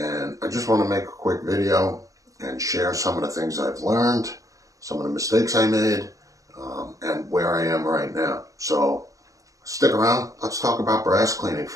I just want to make a quick video and share some of the things I've learned, some of the mistakes I made, and where I am right now. So stick around, let's talk about brass cleaning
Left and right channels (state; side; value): late; left; 0.16 ms